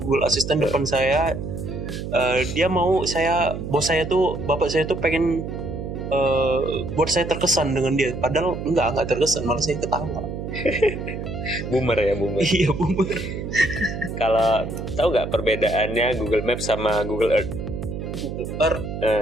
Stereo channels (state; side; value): noise; right; hum, 6 dB below the sound